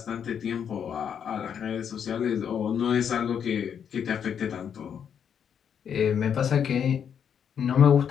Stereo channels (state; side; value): quieter; right; 8.0 dB